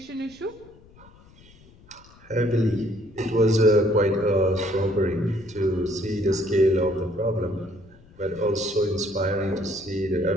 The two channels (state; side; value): noise; left; rumble, 25 dB below the sound